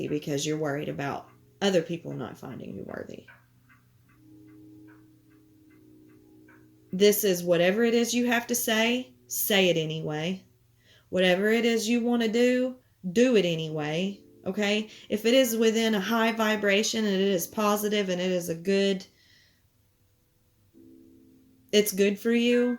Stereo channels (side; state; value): both; identical; correlation 1.00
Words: because you're worried about other people not finding you worthy. This is whatever it is you have to say it anyway. Whatever it is you want to do it anyway. Okay? If it is within a high vibration and it is positive and it is it's good for you,